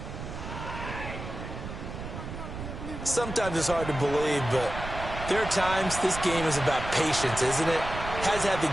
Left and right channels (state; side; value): noise; right; rumble, 8 dB below the sound